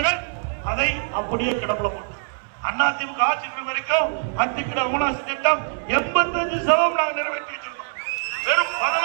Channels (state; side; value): silent; left; 63 dB below the other